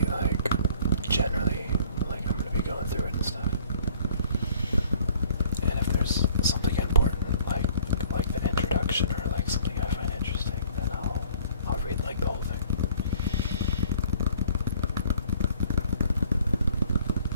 like generally like I'm gonna be going through it and stuff. And if there's something important like the introduction or like something I find interesting, then I'll read like the whole thing.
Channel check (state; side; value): inverted; both; correlation -0.54